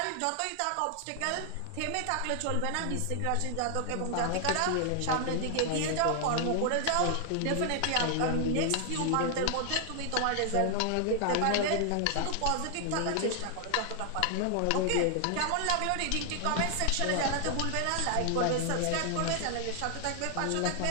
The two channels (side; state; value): both; different; correlation 0.00